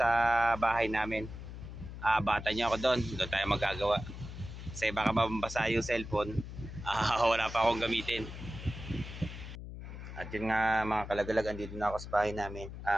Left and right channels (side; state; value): left; noise; hum, 10 dB below the sound